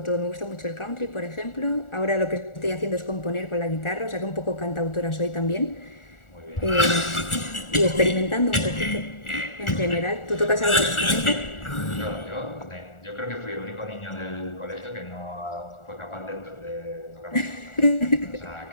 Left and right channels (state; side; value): late; right; 1.4 ms